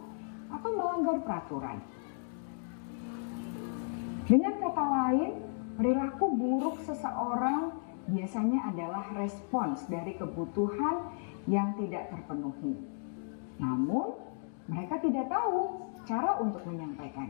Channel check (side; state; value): right; silent; digital silence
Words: atau melanggar peraturan. Dengan kata lain, perilaku buruk seseorang biasanya adalah respons dari kebutuhan yang tidak terpenuhi. Namun, mereka tidak tahu cara untuk